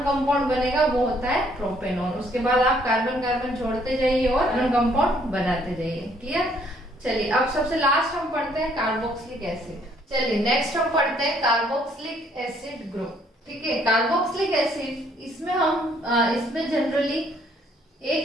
कंपाउंड बनेगा वो होता है प्रोपेनॉन। उसके बाद आप कार्बन कार्बन जोड़ते जाइए और कार्बन कंपाउंड बनाते जाइए। क्लियर, चलिए अब सबसे लास्ट हम पढ़ते हैं कार्बोक्सिलिक एसिड। चलिए नेक्स्ट हम पढ़ते हैं कार्बोक्सिलिक एसिड ग्रुप। ठीक है, कार्बोक्सिलिक एसिड, इसमें हम इसमें जनरली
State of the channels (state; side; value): normal; both; correlation 0.65